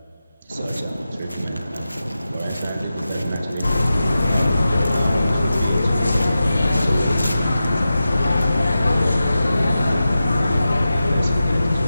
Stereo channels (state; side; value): inverted; both; correlation -0.93